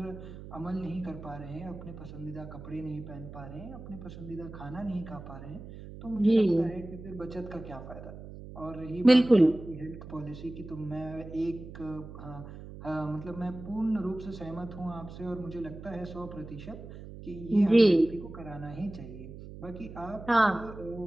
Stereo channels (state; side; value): noise; right; hum, 13 dB below the sound